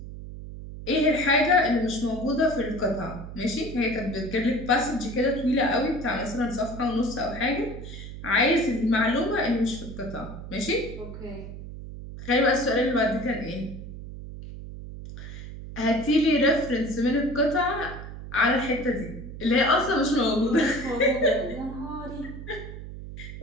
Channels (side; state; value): right; noise; hum, 11 dB below the sound